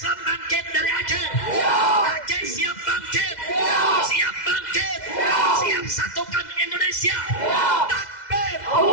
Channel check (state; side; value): late; right; 2.0 ms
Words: bangkit dari Aceh. Aceh siap bangkit. Siap bangkit. Siap satukan Indonesia. Takbir.